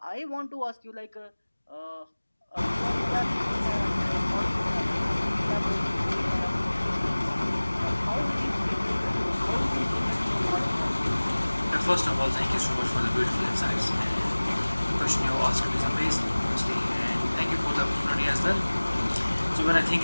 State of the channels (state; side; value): inverted; both; correlation -1.00